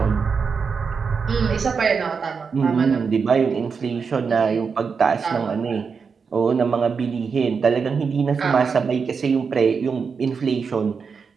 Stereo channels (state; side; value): quieter; left; 5.6 dB